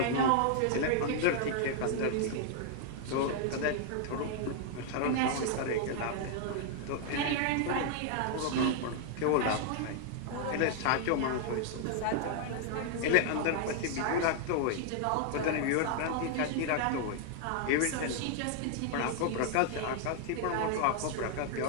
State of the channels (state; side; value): different; both; correlation 0.00